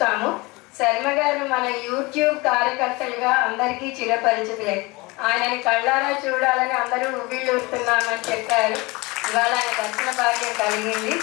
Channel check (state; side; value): quieter; right; 24.0 dB